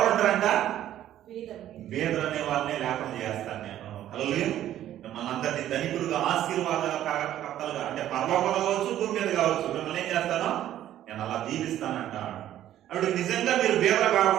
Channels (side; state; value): left; quieter; 12.2 dB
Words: బీదలు అనే వాళ్ళనే లేకుండా చేస్తాను నేను. హల్లెలూయా. మనందరినీ ధనికులుగా, ఆశీర్వాదకర్తలుగా, అంటే పరలోకంలో కావచ్చు, భూమి మీద కావచ్చు, మిమ్మల్ని ఏం చేస్తాను? నేను అలా దీవిస్తానంట. అప్పుడు నిజంగా మీరు బీదలు